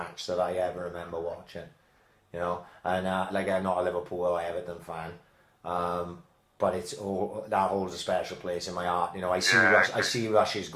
that I ever remember watching. You know, and like I'm not a Liverpool or Everton fan, but that holds a special place in my heart. You know, I see Rush's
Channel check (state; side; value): identical; both; correlation 1.00